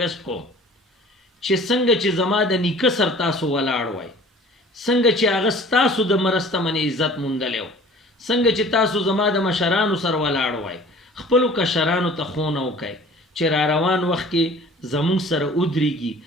کوم چې څنګه چې زما د نیکه سر تاسو ولاړ وای، څنګه چې هغه ستاسو د مرسته منې عزت موندلی و، څنګه چې تاسو زما د مشرانو سر ولاړ وای، خپلو کشرانو ته ښوونه وکئ چې را روان وخت کې زمونږ سره ودرېږي.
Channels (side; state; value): both; normal; correlation 0.47